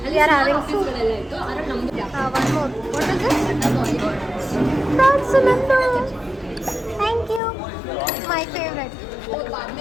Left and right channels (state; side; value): drops out; right; at 7.4 s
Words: ಅಲ್ಲಿ ಆಫೀಸ್ಗಳೆಲ್ಲ ಇತ್ತು. ಅದ್ರಲ್ಲಿ ನಮ್ದು one more. What is this? Prawns ನಂದು. Thank you. My favourite.